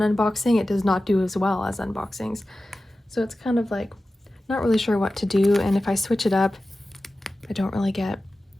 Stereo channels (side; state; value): both; normal; correlation 0.94